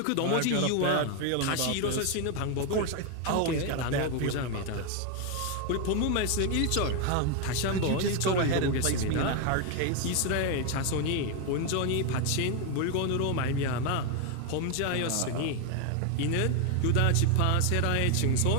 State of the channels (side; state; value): both; different; correlation 0.01